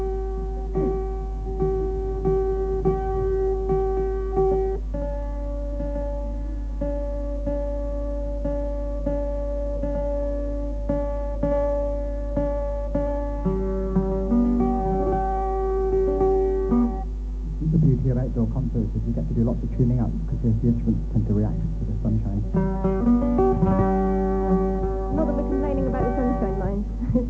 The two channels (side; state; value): both; identical; correlation 1.00